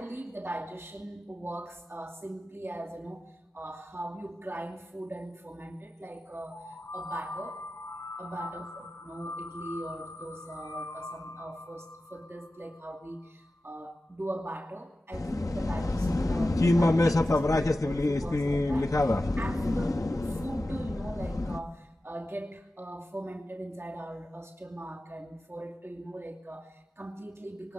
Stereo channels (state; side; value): normal; both; correlation 0.94